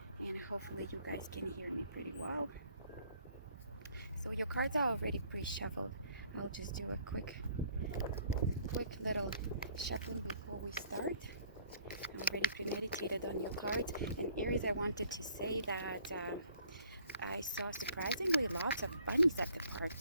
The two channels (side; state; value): both; inverted; correlation -0.59